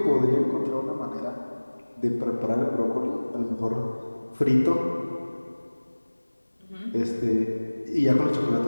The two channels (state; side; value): inverted; both; correlation -1.00